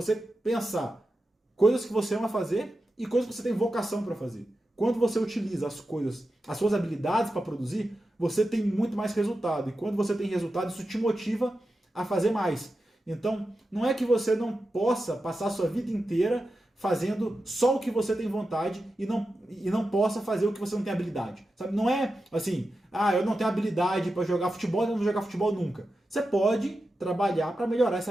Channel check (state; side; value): normal; both; correlation 0.91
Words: pensar coisas que você ama fazer e coisas que você tem vocação para fazer. Quando você utiliza as coisas, as suas habilidades para produzir, você tem muito mais resultado. E quando você tem resultado, isso te motiva a fazer mais. Então, não é que você não possa passar a sua vida inteira fazendo só o que você tem vontade e não possa fazer o que você não tem habilidade. Sabe? Não é assim, eu não tenho habilidade para jogar futebol, eu não vou jogar futebol nunca. Você pode trabalhar para melhorar essa